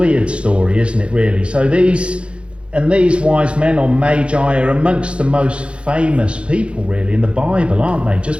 story, isn't it, really? So these wise men, or magi, are amongst the most famous people, really, in the Bible, aren't they?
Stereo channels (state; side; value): late; left; 0.058 ms